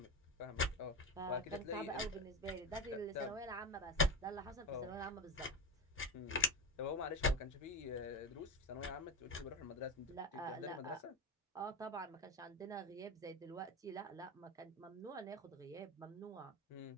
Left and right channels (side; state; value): both; normal; correlation 0.19